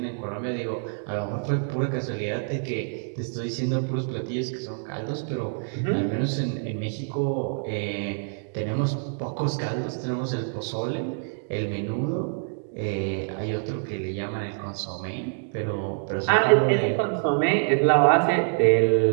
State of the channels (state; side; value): silent; left; digital silence